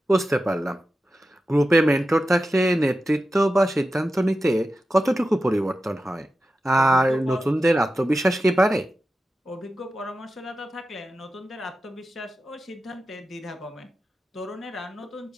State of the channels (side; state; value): both; normal; correlation 0.92